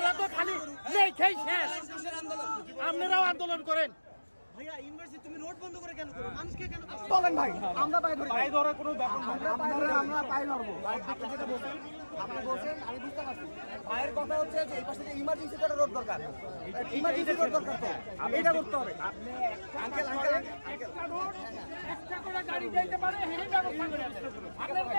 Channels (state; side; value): inverted; both; correlation -1.00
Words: তো খালি নেই খাই শেষ আপনারাও আন্দোলন করেন ভাইয়া ইউনিভার্সিটি তুমি রোড বন্ধ করে কেন করো মানুষকে কেন বলেন ভাই আমরা পাই ধরার কোনো ব্যাপার না আমরা পাই ধরবো যেটা বলছেন আপনি বলছেন আমি বুঝতে পারছি ভাইয়ের কথা হচ্ছে যে এই পাশে যে ইমার্জেন্সি একটা রোড দরকার ইমার্জেন্সি রোড দরকার তো এটা করতে হবে আপনি আঙ্কেল একটা রোড একটা করে গাড়ি যাইতে পারে এই ব্যবস্থা করে